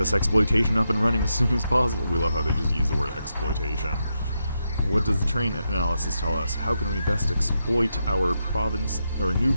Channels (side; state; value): both; inverted; correlation -0.84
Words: exploitation up and running as soon as possible. We love how they just use the word exploitation. What does the terrain analysis tell us? How can we best exploit our province, or new